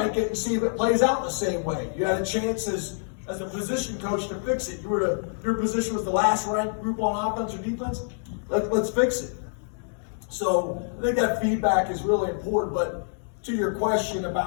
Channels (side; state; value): right; silent; digital silence